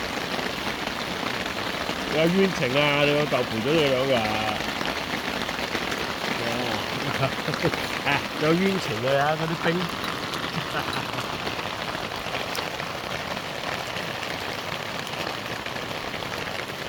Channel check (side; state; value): both; identical; correlation 1.00